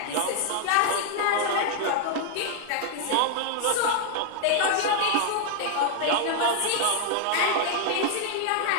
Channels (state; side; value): different; both; correlation 0.00